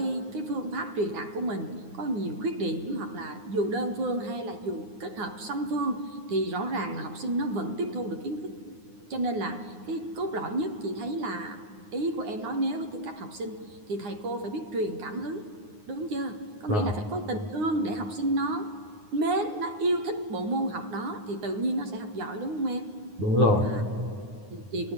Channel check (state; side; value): late; left; 9.6 ms